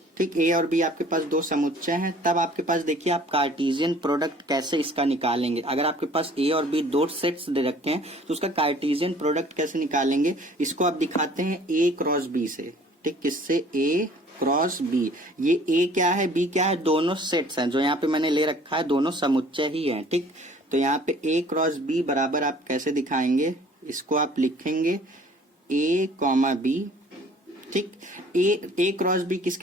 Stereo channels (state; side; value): normal; both; correlation 0.53